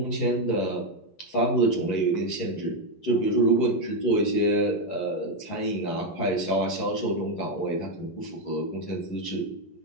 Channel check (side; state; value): right; late; 11 ms